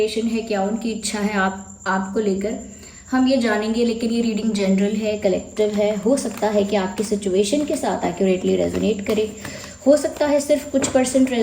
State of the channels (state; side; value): identical; both; correlation 1.00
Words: है, क्या उनकी इच्छा है आपको लेकर, हम ये जानेंगे। लेकिन ये रीडिंग जनरल है, कलेक्टिव है। हो सकता है कि आपकी सिचुएशन के साथ एक्यूरेटली रेजोनेट करे, हो सकता है सिर्फ कुछ %